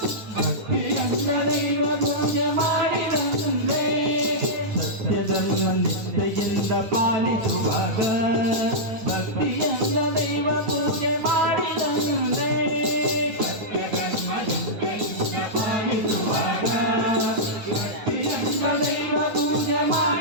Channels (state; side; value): late; left; 9.6 ms